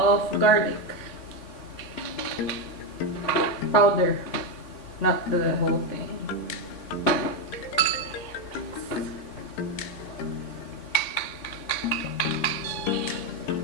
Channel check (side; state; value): right; late; 3.6 ms